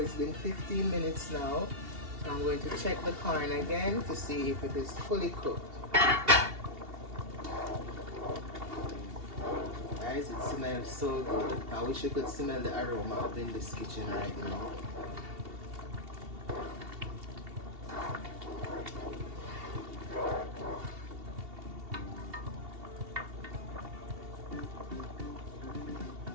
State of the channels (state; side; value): late; left; 2.7 ms